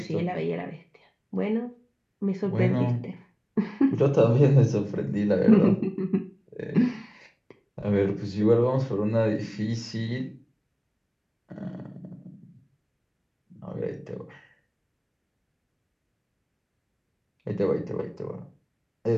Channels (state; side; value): identical; both; correlation 1.00